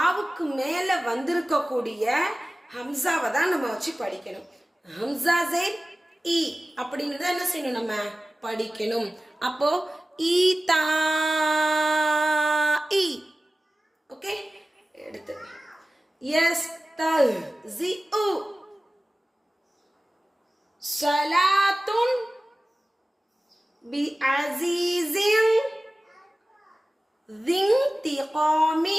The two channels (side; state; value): both; normal; correlation 0.96